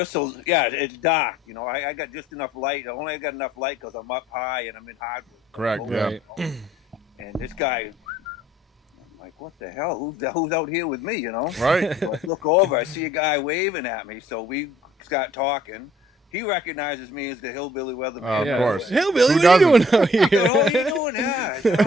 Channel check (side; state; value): both; normal; correlation 0.59